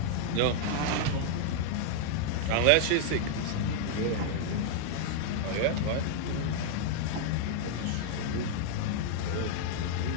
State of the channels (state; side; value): different; both; correlation -0.01